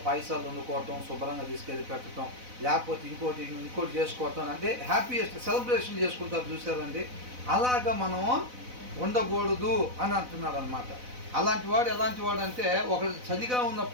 పైసలు వండుకోవటం, శుభ్రంగా తీసుకెళ్ళి పెట్టడం, లేకపోతే ఇంకోటి చేసుకోవటం, అంటే హ్యాపీయెస్ట్ సెలబ్రేషన్ చేసుకుంటారు చూసారండి. అలాగా మనం ఉండకూడదు అని అంటున్నాడు అనమాట. అలాంటి వాడు ఎలాంటి వాడు అంటే, ఒకడు చలిగా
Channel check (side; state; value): left; late; 4.0 ms